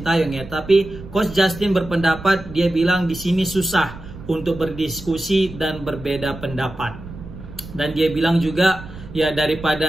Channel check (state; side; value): noise; right; rumble, 14 dB below the sound